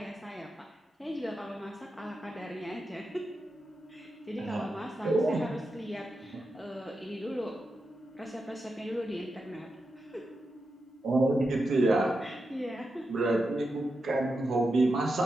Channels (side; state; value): both; normal; correlation 0.88